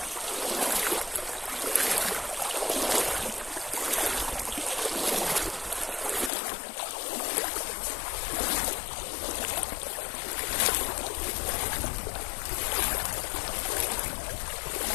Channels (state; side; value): drops out; right; at 6.3 s